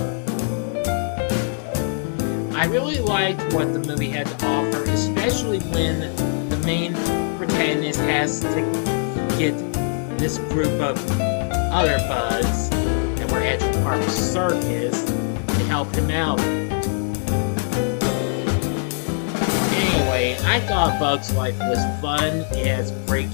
I really liked what the movie had to offer, especially when the main protagonist has to get this group of other bugs that were at the Park Circus to help him out. Anyway, I thought Bug's Life was fun. It has great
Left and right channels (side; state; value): right; silent; 64 dB below the other